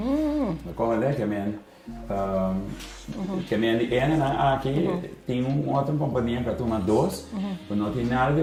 Como é que aqui tem uma outra companhia que toma dois, não tem nada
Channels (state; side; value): identical; both; correlation 1.00